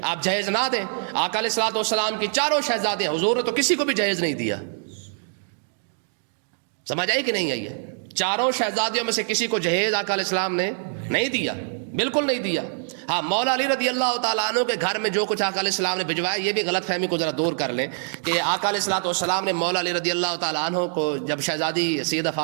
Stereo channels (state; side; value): silent; left; digital silence